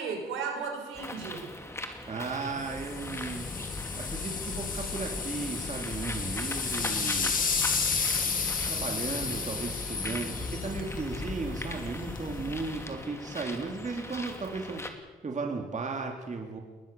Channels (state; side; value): normal; both; correlation 0.39